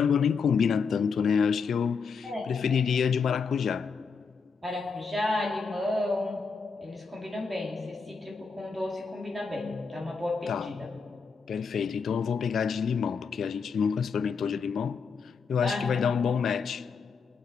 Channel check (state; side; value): quieter; right; 5.4 dB